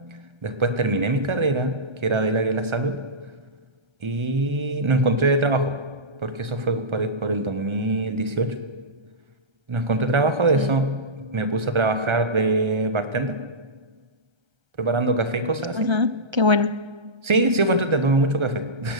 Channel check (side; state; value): left; late; 1.4 ms